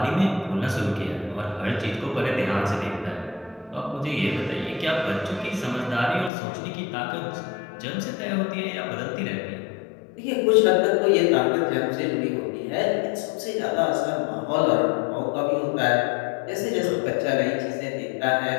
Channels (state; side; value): drops out; right; at 6.3 s